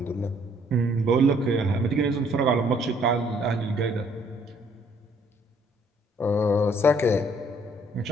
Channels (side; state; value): both; normal; correlation 0.64